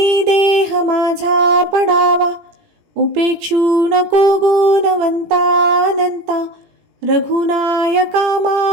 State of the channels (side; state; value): left; late; 18 ms